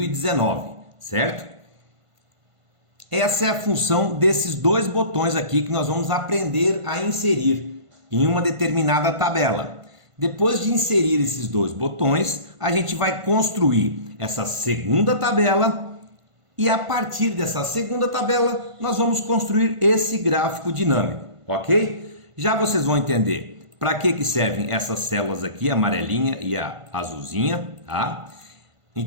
certo? Essa é a função desses dois botões aqui que nós vamos aprender a inserir em uma determinada tabela. Depois de inserir esses dois botões, a gente vai construir essa segunda tabela e a partir dessa segunda tabela nós vamos construir esse gráfico dinâmico, ok? Já vocês vão entender para que servem essas células aqui, a amarelinha e a azulzinha, tá?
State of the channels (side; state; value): left; late; 1.5 ms